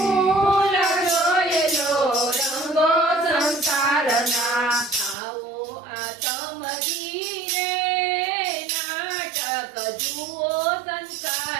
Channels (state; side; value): drops out; left; at 5.2 s